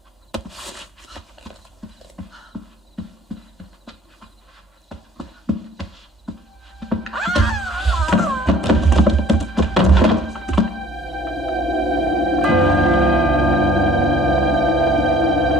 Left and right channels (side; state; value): both; normal; correlation 0.54